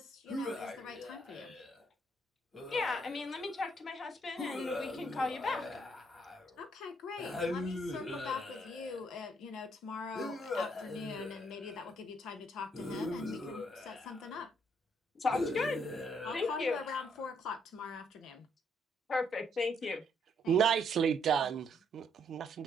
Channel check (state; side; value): normal; both; correlation 0.71